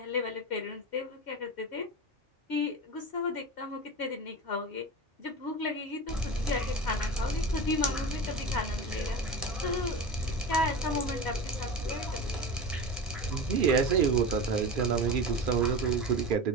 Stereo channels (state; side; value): normal; both; correlation 0.28